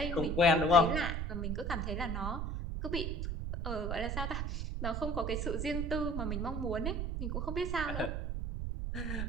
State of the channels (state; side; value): noise; right; rumble, 2 dB below the sound